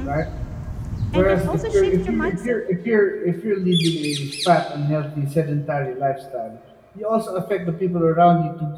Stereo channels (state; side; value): identical; both; correlation 1.00